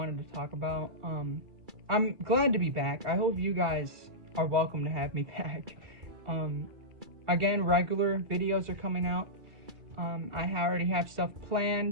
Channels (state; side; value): late; left; 2.3 ms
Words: to talk about. I'm glad to be back. I hope you guys are welcome to have me back. Again, regular videos are coming out. I already have stuff